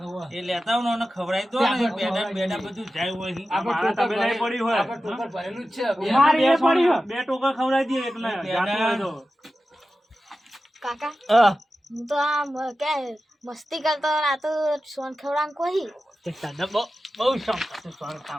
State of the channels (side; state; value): both; normal; correlation 0.94